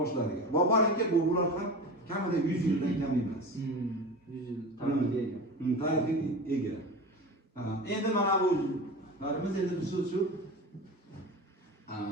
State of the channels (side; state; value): both; normal; correlation 0.30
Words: Boborinki bular ham kamida 100 yildan kam emas. 100 yil tarixiga ega. Tarixiga ega. Endi mana bu larimiz endi biz shu